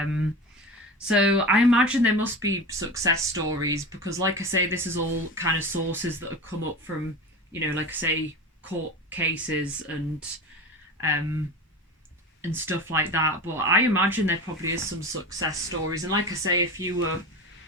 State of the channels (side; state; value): both; normal; correlation 0.30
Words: So I imagine there must be success stories, because like I say, this is all kind of sources that have come up from, like I say, court cases and stuff like that. But I imagine there probably is some success stories. And like I say, if you were